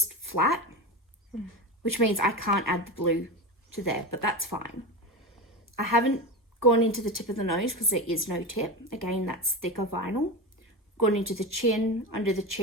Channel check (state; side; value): normal; both; correlation 0.21